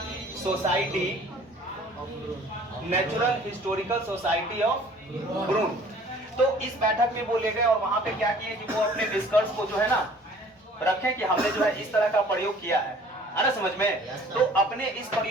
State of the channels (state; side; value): normal; both; correlation 0.52